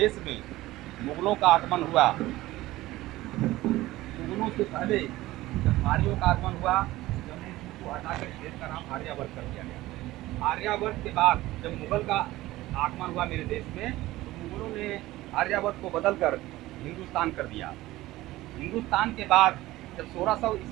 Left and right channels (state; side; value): quieter; left; 17.3 dB